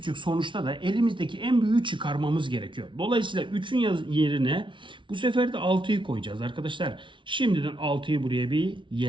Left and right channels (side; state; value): left; late; 0.24 ms